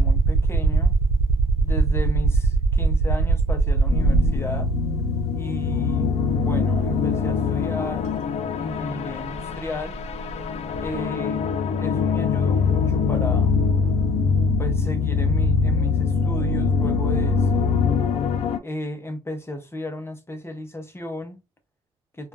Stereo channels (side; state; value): both; normal; correlation 0.53